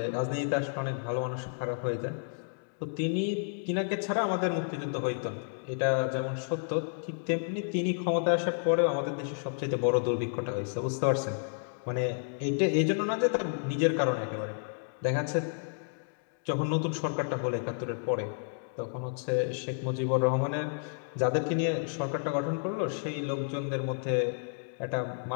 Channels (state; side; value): silent; right; digital silence